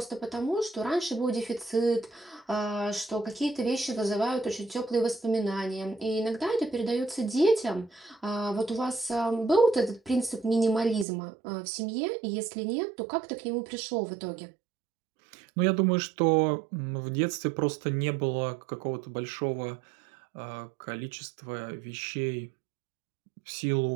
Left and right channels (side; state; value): left; drops out; at 11.1 s